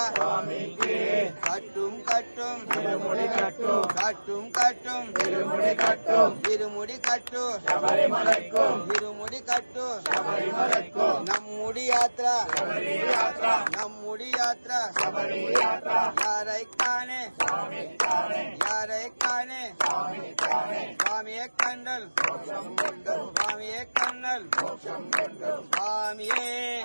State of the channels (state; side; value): inverted; both; correlation -1.00